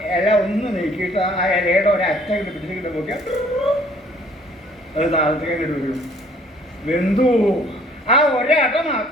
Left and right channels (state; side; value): normal; both; correlation 0.58